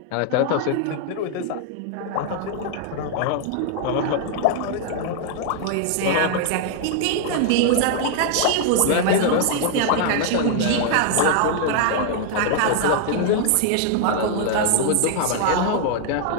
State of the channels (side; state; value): both; different; correlation 0.00